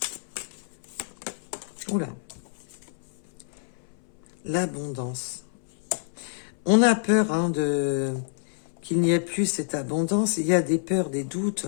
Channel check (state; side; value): silent; right; 60 dB below the other